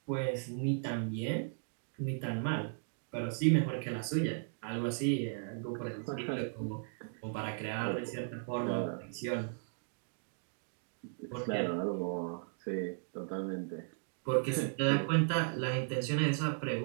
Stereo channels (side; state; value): left; silent; digital silence